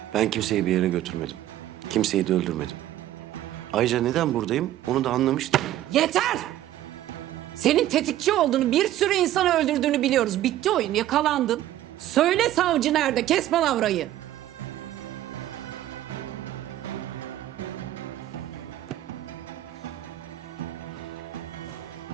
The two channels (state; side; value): quieter; left; 13.4 dB